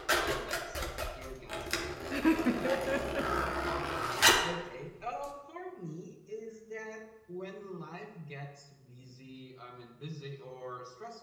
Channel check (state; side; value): identical; both; correlation 1.00